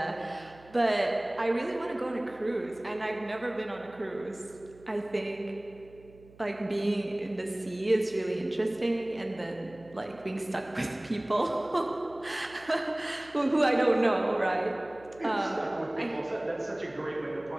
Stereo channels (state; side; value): noise; right; hum, 23 dB below the sound